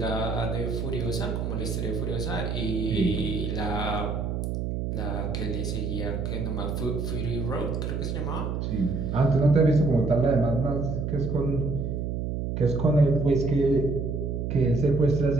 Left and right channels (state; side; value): noise; right; hum, 2 dB below the sound